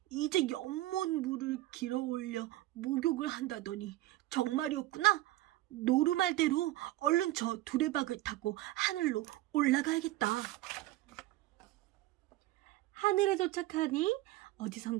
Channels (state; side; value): quieter; left; 16.3 dB